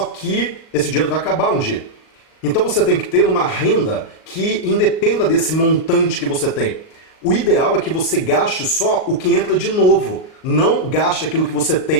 que esse dinheiro vai acabar um dia. Então você tem que ter uma renda que independa desse montante que você tem. O ideal é que você gaste só o que entra de novo, não gaste aquilo que você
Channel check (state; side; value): late; right; 38 ms